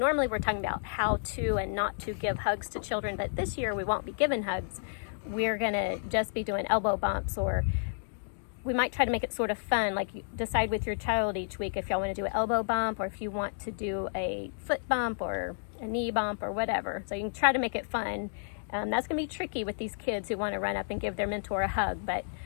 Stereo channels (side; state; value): right; silent; digital silence